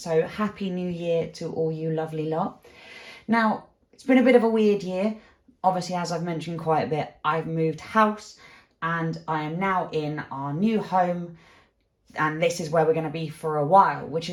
happy new year to all you lovely lot. Now, it's been a bit of a weird year. Obviously, as I've mentioned quite a bit, I've moved house and I am now in our new home. And this is where we're going to be for a while, which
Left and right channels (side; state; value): both; identical; correlation 1.00